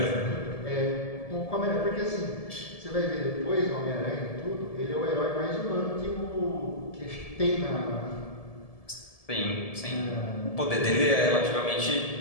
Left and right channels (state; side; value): late; right; 1.7 ms